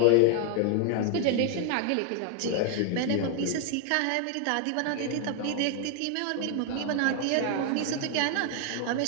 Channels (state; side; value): different; both; correlation 0.00